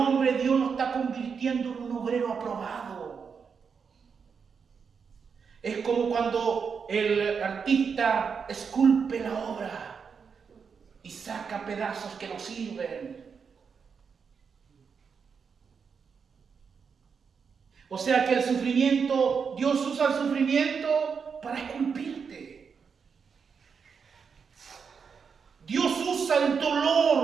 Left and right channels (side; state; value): left; quieter; 6.1 dB